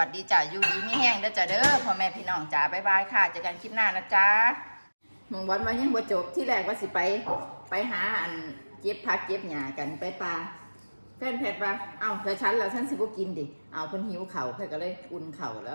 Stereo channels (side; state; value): both; inverted; correlation -1.00